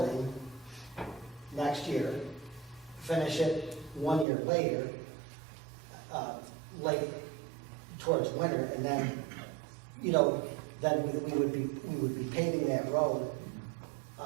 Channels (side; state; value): left; drops out; at 4.2 s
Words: next year, finish it 1 year later, late towards winter, and then, then we would be paving that road,